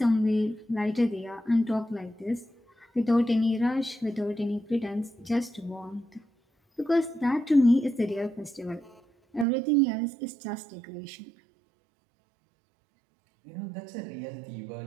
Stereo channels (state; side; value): drops out; left; at 9.5 s